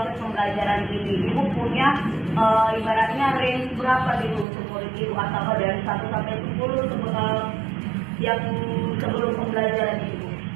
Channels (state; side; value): drops out; left; at 4.5 s